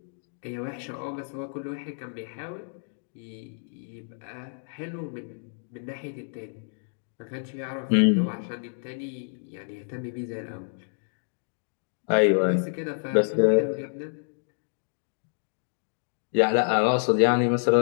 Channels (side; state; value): right; silent; digital silence